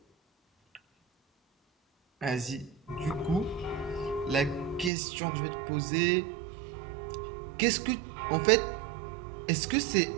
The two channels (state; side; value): drops out; left; at 4.9 s